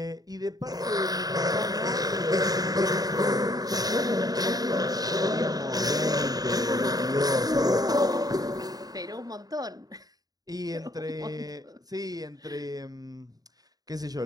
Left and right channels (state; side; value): late; left; 0.18 ms